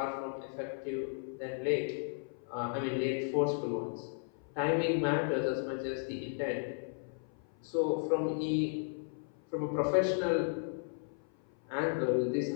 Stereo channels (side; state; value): right; silent; 55 dB below the other